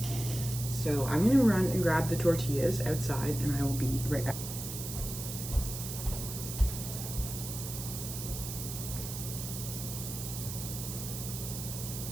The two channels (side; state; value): right; noise; hiss, 7 dB below the sound